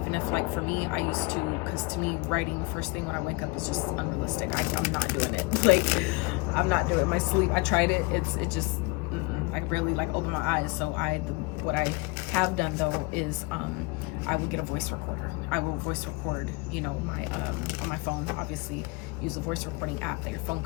like for me, I used to, because to me, writing first thing when I wake up is just unrealistic. I'm not doing it. Like, I'm not doing it. My sleep, I tried it. It just. I barely like open my eyes. So what I have done though is I would get a voice recorder. I will voice record, you know, my on my phone. Obviously, use a voice recording app that your phone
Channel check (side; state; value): right; quieter; 26.3 dB